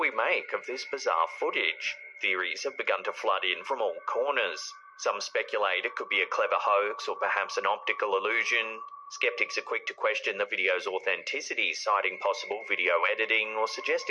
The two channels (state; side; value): identical; both; correlation 1.00